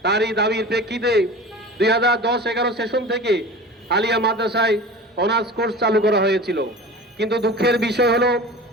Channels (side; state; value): both; normal; correlation 0.36